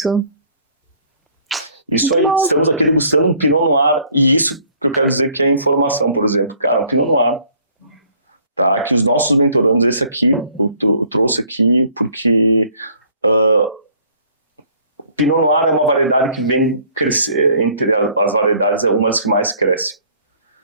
Isso aí, estamos aqui degustando um Pinot Noir, e isso que eu quero dizer que é informação, por exemplo. Cara, um Pinot Noir, tá? Que os nossos mentorandos, esse aqui, eu trouxe aqui porque Pinot Noir é uma variedade que vem crescer, entre as variedades é uma das que mais cresce,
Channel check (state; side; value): inverted; both; correlation -0.57